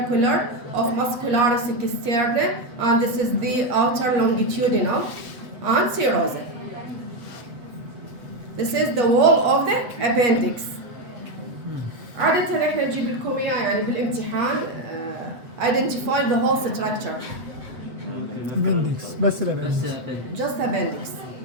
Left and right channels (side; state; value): left; late; 8.0 ms